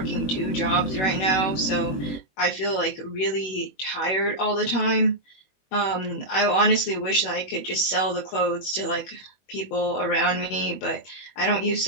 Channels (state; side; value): late; right; 21 ms